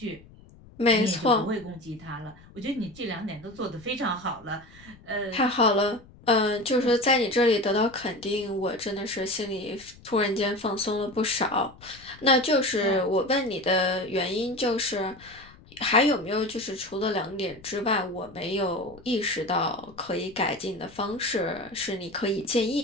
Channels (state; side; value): noise; left; rumble, 23 dB below the sound